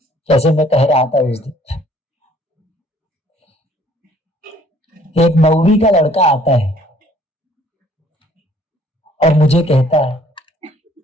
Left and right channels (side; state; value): both; normal; correlation 0.59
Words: जैसे मैं कह रहा था उस दिन, एक 9वीं का लड़का आता है और मुझे कहता है